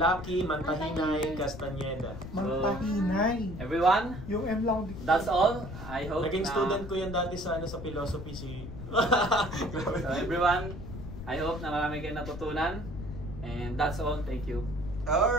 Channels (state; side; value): noise; left; rumble, 10 dB below the sound